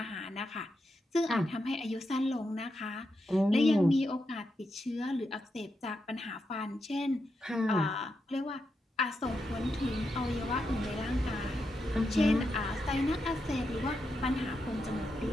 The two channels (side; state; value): both; normal; correlation 0.85